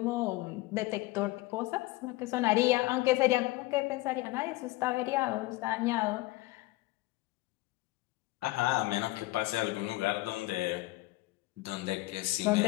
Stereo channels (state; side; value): quieter; right; 19.6 dB